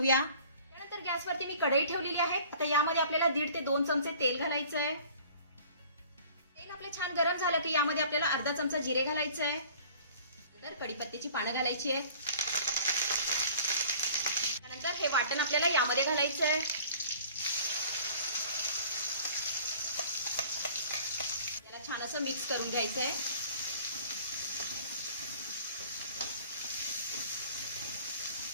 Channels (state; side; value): inverted; both; correlation -0.49